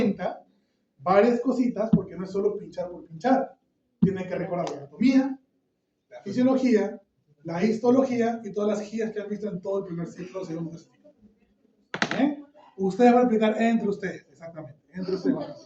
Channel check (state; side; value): identical; both; correlation 1.00